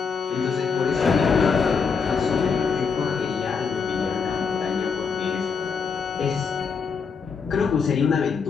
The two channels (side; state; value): right; quieter; 5.7 dB